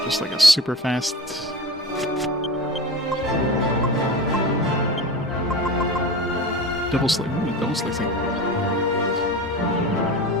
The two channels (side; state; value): both; normal; correlation 0.31